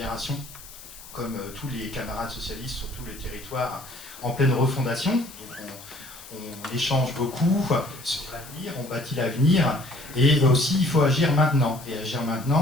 comme tous les camarades socialistes sur tous les territoires, en pleine refondation. Donc on échange beaucoup sur l'avenir, on bâtit l'avenir, et aussi il faut agir maintenant. Et agir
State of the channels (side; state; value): left; noise; hiss, 17 dB below the sound